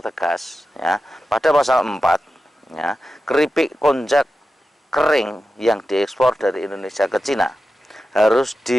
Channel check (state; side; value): normal; both; correlation 0.92